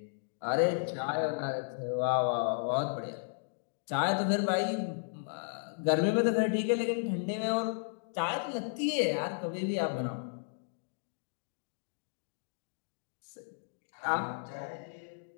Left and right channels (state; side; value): silent; right; digital silence